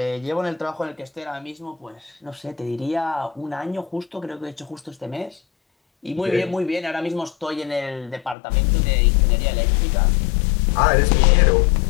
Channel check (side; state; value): right; drops out; at 8.3 s